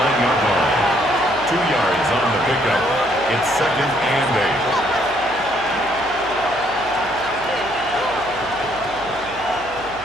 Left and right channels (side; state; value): right; noise; hum, 19 dB below the sound